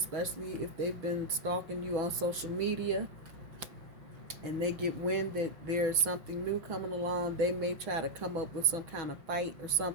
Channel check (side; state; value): left; late; 6.1 ms